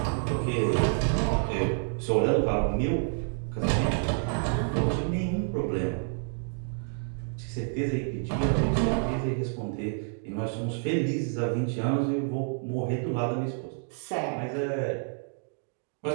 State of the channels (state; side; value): silent; left; 59 dB below the other